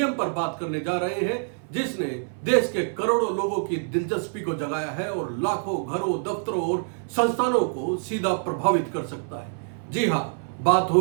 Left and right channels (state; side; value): silent; left; 60 dB below the other